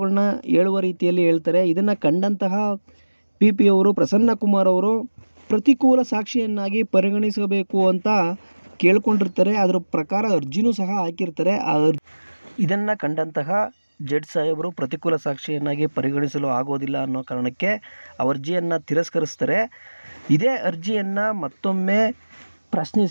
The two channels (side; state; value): both; inverted; correlation -1.00